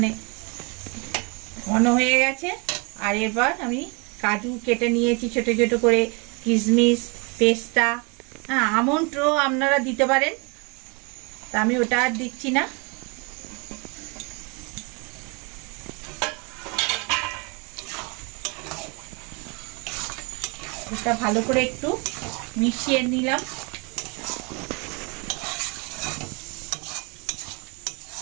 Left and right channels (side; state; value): left; quieter; 31.2 dB